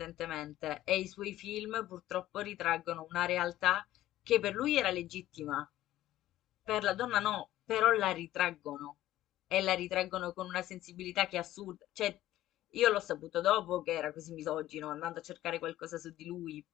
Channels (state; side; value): quieter; right; 14.3 dB